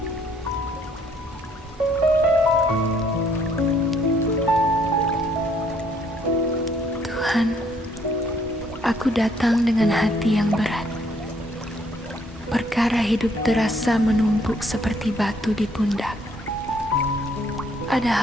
Tuhan, aku datang dengan hati yang berat. Perkara hidup terasa menumpuk seperti batu di pundak. Ada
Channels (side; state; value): both; normal; correlation 0.66